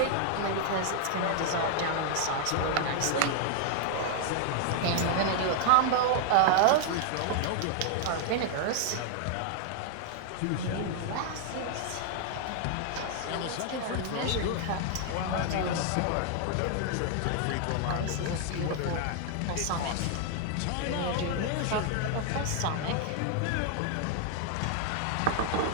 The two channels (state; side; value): different; both; correlation 0.00